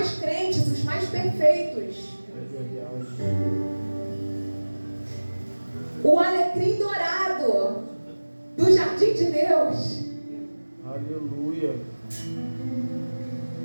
crentes, os mais perfeitos. O alecrim dourado do jardim de Deus. Aleluia.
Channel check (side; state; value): both; inverted; correlation -1.00